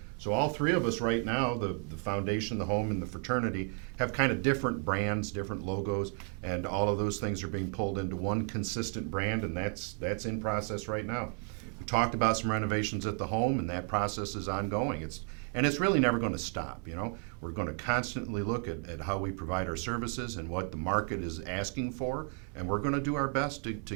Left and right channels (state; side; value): quieter; left; 37.2 dB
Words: So all three of us right now, the foundation, the home, and the fraternity, have kind of different brands, different logos, and all of those things are being pulled into one consistent brand, and that's in process right now. We talked about some renovations at the home, and that process is ongoing. It's really never going to stop. We're going to constantly look at how we provide our services and what the market is asking for, and we're going to do our best to